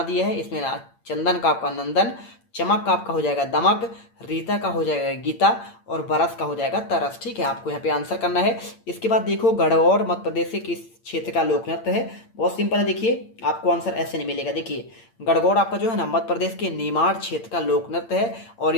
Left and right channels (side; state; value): right; late; 8.7 ms